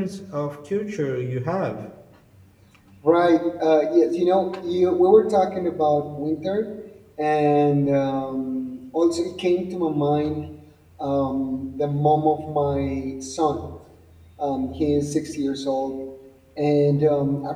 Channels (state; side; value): identical; both; correlation 1.00